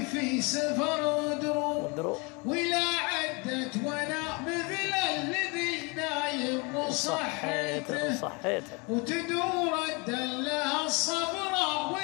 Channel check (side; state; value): right; quieter; 29.4 dB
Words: في سفر ودروب، ولا عدت وانا مثل الذي نايم وصحيته، وتدور الدلة الصفراء